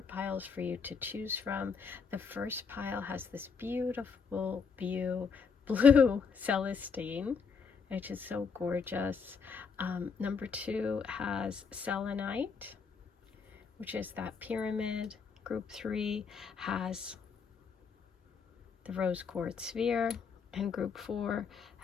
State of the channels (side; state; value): right; quieter; 5.7 dB